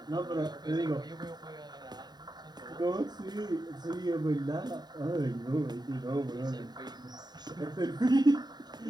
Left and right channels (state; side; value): late; left; 0.20 ms